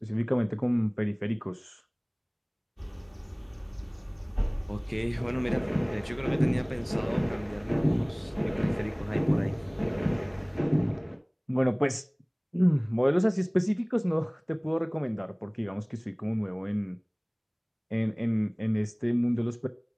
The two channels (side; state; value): both; identical; correlation 1.00